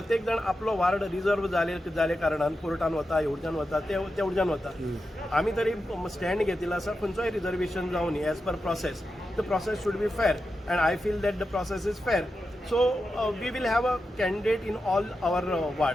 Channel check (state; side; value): normal; both; correlation 0.89